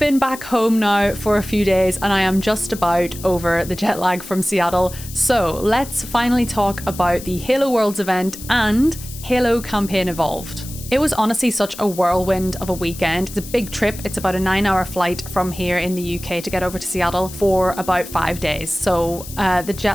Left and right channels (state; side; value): noise; left; hiss, 14 dB below the sound